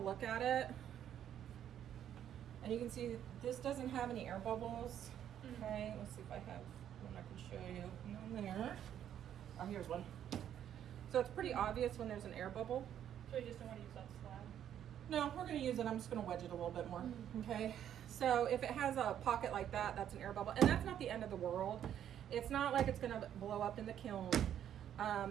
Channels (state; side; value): quieter; left; 10.1 dB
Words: at it and you can see this doesn't have any air bubbles. Okay, let's see if I have one I can show you. None there. Oh, here's one. So it's pretty obvious when there's an air bubble. So you just don't want to use that slab? No, we're gonna use it. I'm just gonna wedge it a little bit more. Okay, so if it has a pocket like that, that's an air bubble. And that's not the end of the world. It's not like it's gonna blow up in the kiln.